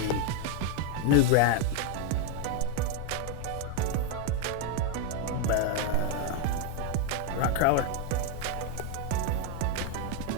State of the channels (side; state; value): both; different; correlation 0.02